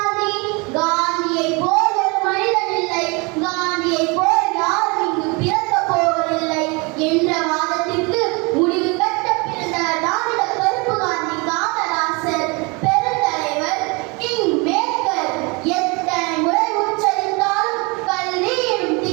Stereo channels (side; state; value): left; quieter; 28.6 dB